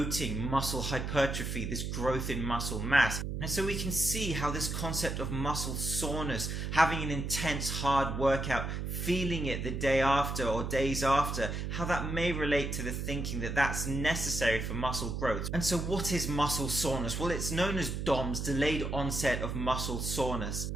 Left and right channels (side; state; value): right; noise; hum, 3 dB below the sound